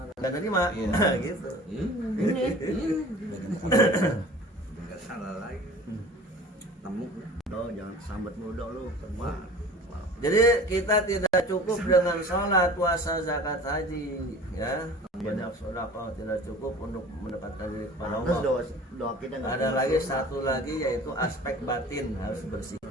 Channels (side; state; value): both; normal; correlation 0.42